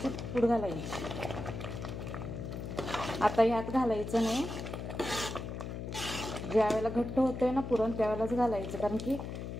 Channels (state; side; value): noise; left; hum, 6 dB below the sound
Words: पूड घालायची। आता यात घालायचं नाही, ज्या वेळेला घट्ट होतंय ना पुरण त्यावेळेलाच घालायचं, कारण की